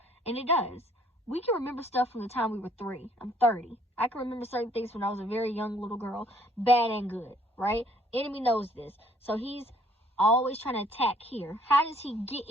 And it does. We can remember stuff from the time we were 3. I'm 30. I can remember certain things when I was a very young little girl, bad and good, right? Enemy knows this. So he's always trying to attack here. How does he get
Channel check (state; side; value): normal; both; correlation 0.62